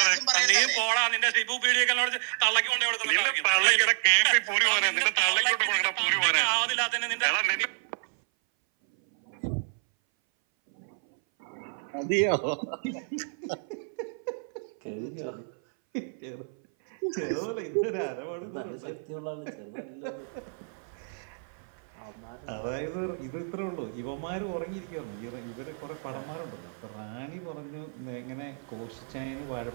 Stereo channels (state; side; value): silent; left; 58 dB below the other